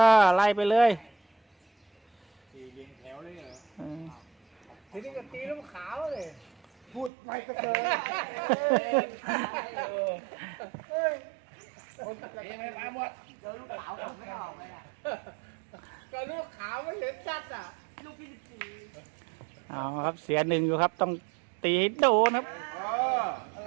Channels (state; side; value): drops out; left; at 7.1 s